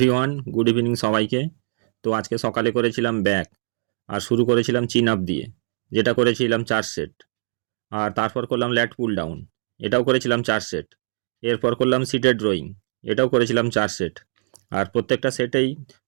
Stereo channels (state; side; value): silent; left; digital silence